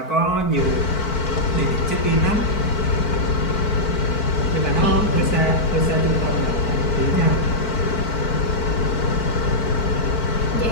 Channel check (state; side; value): late; right; 4.5 ms